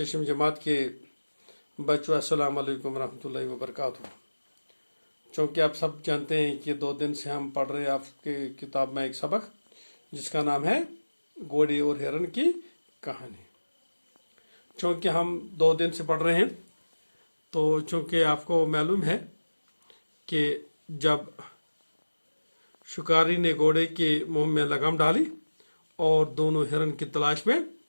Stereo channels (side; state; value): both; inverted; correlation -1.00